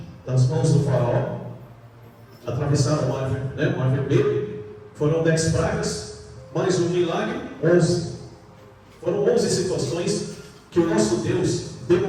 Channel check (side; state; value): both; identical; correlation 1.00